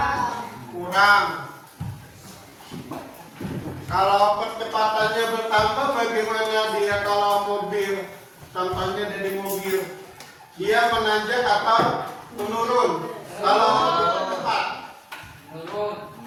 Kalau percepatannya bertambah, bagaimana dia kalau mobil? Contohnya dari mobil, dia menanjak atau menurun? Kalau dipercepat, Menurun.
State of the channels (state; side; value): identical; both; correlation 1.00